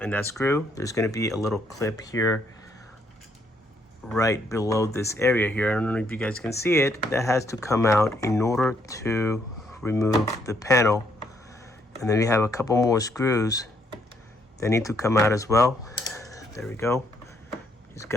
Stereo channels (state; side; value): normal; both; correlation 0.71